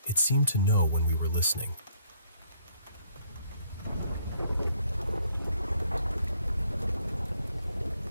it seemed to know when we were listening.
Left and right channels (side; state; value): both; inverted; correlation -0.66